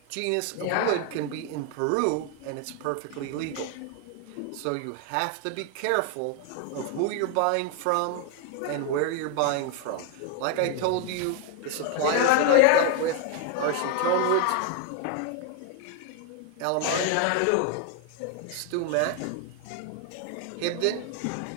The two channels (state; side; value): different; both; correlation 0.01